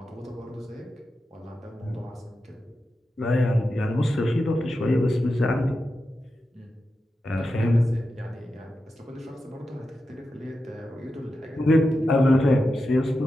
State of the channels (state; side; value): normal; both; correlation 0.90